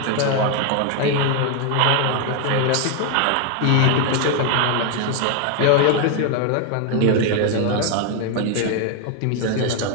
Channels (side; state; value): both; different; correlation 0.01